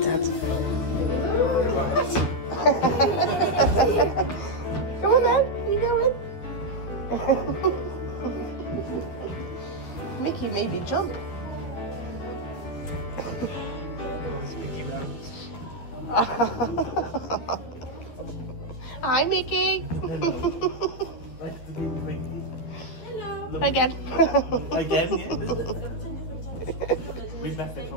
Dad. Come on then, you going? Mickey maybe jump. Hi, Mickey. Hello. Nice to meet Mickey. Hello. Again. Again, yeah. We met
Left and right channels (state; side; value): late; right; 12 ms